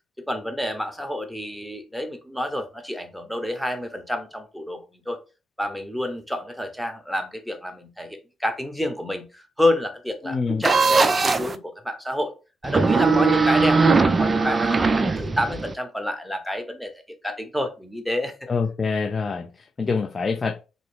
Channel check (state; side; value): normal; both; correlation 0.88